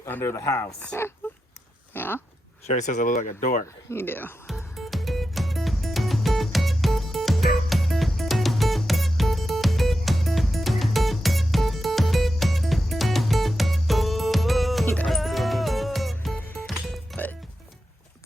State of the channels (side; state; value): both; normal; correlation 0.89